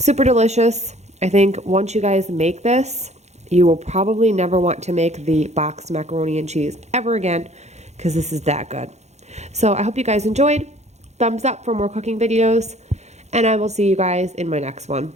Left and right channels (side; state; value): left; late; 0.33 ms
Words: delicious. I think once you guys make this, you will probably never want to make the boxed macaroni and cheese ever again because this is that good. So I hope you guys enjoyed. Thumbs up for more cooking videos, and I will see you guys in my next one.